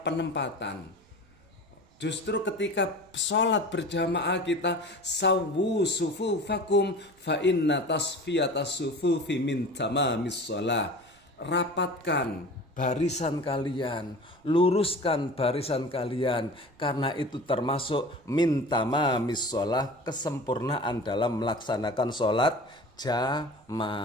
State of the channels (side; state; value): right; noise; rumble, 30 dB below the sound